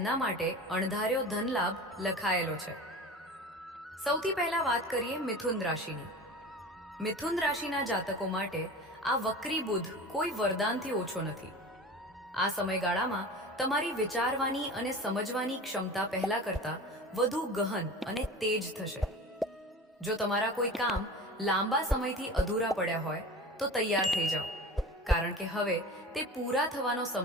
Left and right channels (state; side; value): normal; both; correlation 0.35